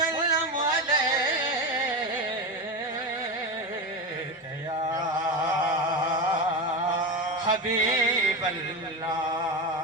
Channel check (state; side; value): normal; both; correlation 0.18